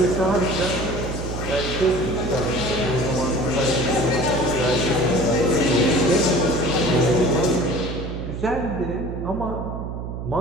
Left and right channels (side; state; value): right; noise; hum, 6 dB below the sound